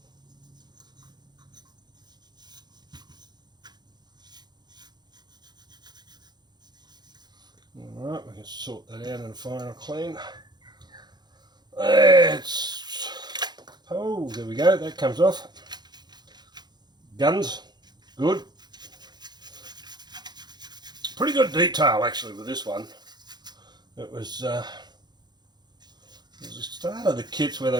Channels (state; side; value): late; left; 0.21 ms